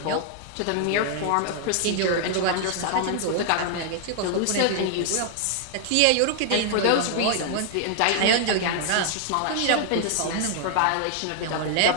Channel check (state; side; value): different; both; correlation 0.00